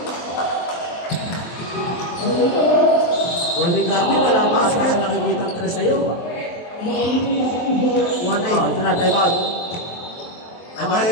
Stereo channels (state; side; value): late; right; 23 ms